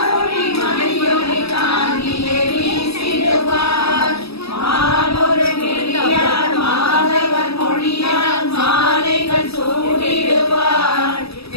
மணியொளி காந்தியை வீசிடுவார் மானொரு கிளியார் மாதவர் மொழியார் மாலைகள் சூடிடுவார்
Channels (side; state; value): right; late; 0.78 ms